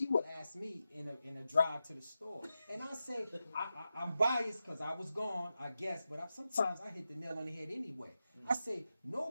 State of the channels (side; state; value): both; inverted; correlation -0.90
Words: would ask me in a drive to the store, and I say I'm biased because I was gone, I guess, but sometimes I hit the nail on the head anyway. I say